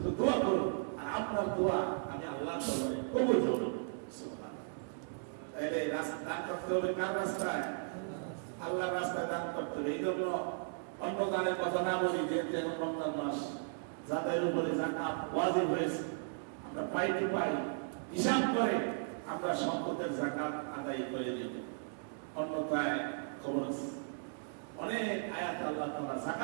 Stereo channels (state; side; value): silent; left; digital silence